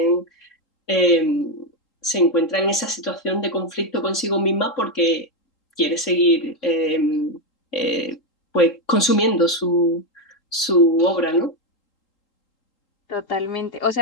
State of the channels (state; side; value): late; right; 3.8 ms